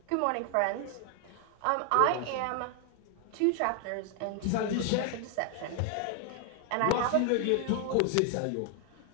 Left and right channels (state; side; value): different; both; correlation 0.00